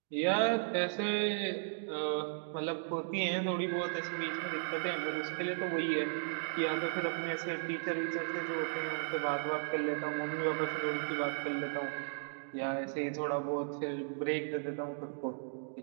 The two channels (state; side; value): silent; left; digital silence